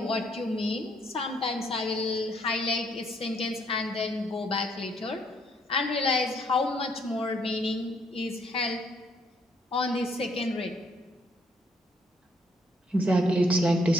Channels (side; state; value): both; normal; correlation 0.69